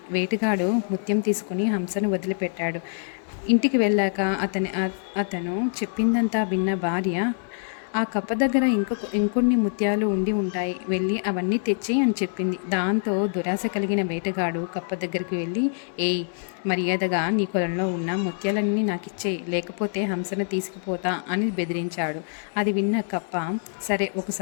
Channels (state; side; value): silent; right; digital silence